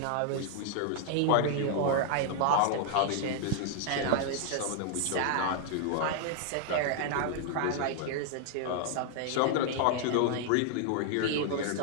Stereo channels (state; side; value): different; both; correlation 0.00